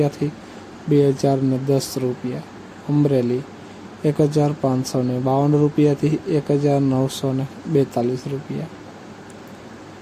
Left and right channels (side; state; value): both; identical; correlation 1.00